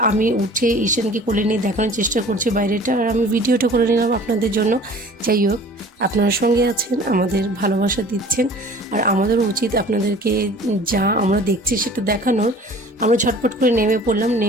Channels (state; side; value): normal; both; correlation 0.46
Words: আমি উঠে ঈশানকে কোলে নিয়ে দেখানোর চেষ্টা করছি বাইরেটা, আর আমি ভিডিওটা করে নিলাম আপনাদের জন্য। যাই হোক, আপনার সঙ্গে আছেন, আমাদের ভালোবাসা দিচ্ছেন, আর আমাদেরও উচিত আপনাদেরকে যা আমরা দেখছি সেটা দেখানোর। আমরা ঝটপট করে নেমে পড়লাম,